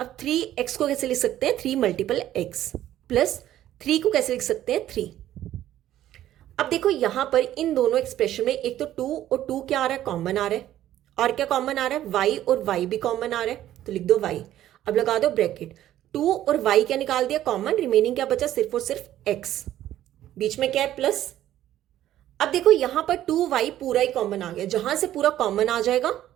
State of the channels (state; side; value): quieter; left; 12.8 dB